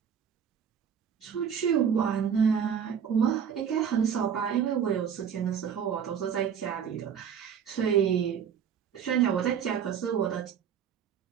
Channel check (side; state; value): left; quieter; 7.9 dB